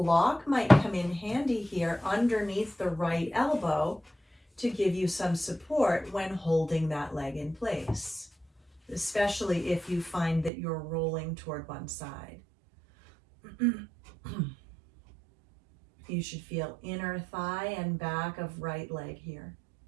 might come in handy here underneath the right elbow to give you some support when holding that leg in place, especially if you find that you're rolling toward one side. You should feel inner thigh and back of right leg here.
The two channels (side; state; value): left; drops out; at 10.5 s